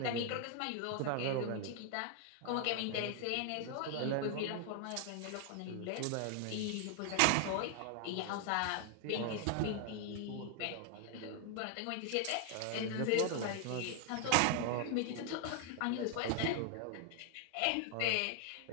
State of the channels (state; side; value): different; both; correlation 0.00